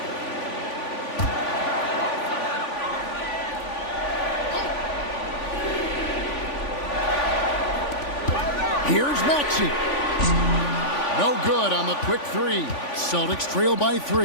Here's Maxey. No good on the quick 3. Celtics trail by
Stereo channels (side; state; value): right; late; 3.5 ms